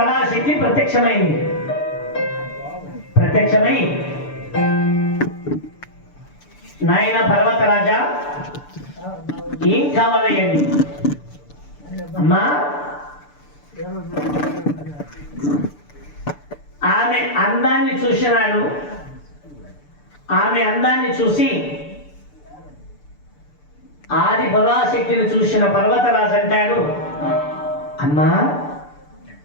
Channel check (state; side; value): late; right; 6.8 ms